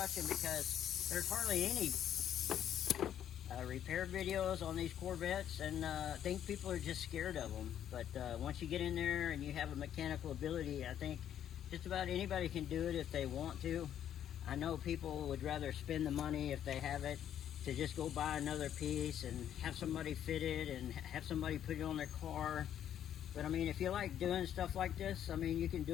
because there's hardly any repair videos on these Corvettes, and I think people are just scared of them. But once you get in there and you have a mechanical ability, I think just about anybody can do it if they want to. I know people would rather spend the money, if they have it, to just go buy another piece and have somebody fit it and have somebody put it on their car. But I mean, if you like doing stuff like this, I mean, you can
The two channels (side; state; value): right; quieter; 10.2 dB